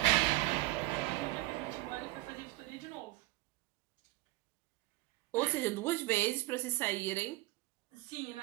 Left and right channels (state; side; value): quieter; left; 19.3 dB